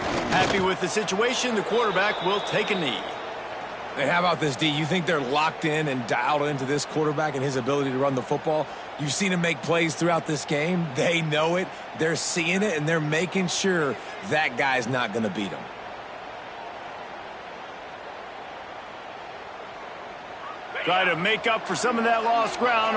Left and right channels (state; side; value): identical; both; correlation 1.00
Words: Happy with the situation, the quarterback will take a knee. Hey, how about this, D? You think they're locked in and dialed into this quarterback and his ability to run the football? You've seen him make plays throughout this game. They know it. They're seeing it, and they're making sure that guy's not going to beat him. Try to make up for some of that lost